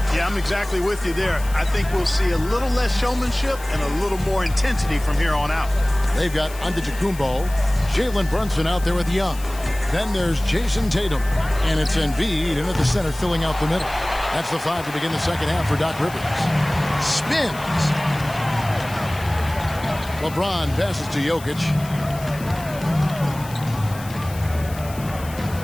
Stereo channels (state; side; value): noise; left; hiss, 17 dB below the sound